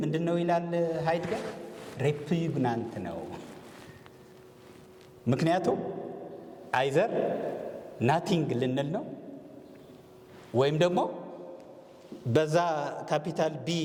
ምንድን ነው ይላል ሃይድገር? ሬፑግናንት ነው። ምክንያቱም አይዘር ናቲንግ ልንል ነው ወይም ደግሞ በዛ ካፒታል ቢ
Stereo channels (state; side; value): identical; both; correlation 1.00